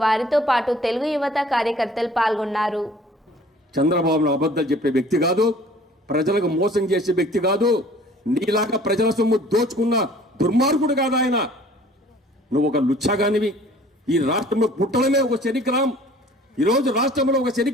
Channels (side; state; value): both; normal; correlation 0.51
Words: వారితో పాటు తెలుగు యువత కార్యకర్తలు పాల్గొన్నారు। చంద్రబాబు అబద్ధాలు చెప్పే వ్యక్తి కాదు, ప్రజలకు మోసం చేసే వ్యక్తి కాదు, నీలాగా ప్రజల సొమ్ము దోచుకున్న దుర్మార్గుడు కాదు ఆయన। నువ్వు ఒక లుచ్చగానివి। ఈ రాష్ట్రంలో పుట్టడమే ఒక శనిగ్రహం। ఈరోజు రాష్ట్రంలో ఒక